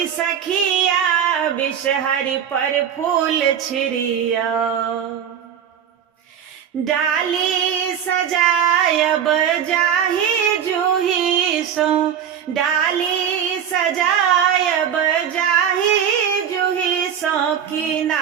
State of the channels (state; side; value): quieter; left; 8.7 dB